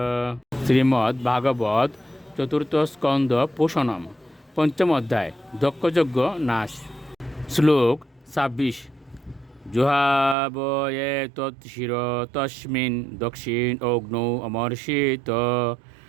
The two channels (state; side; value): drops out; left; at 10.4 s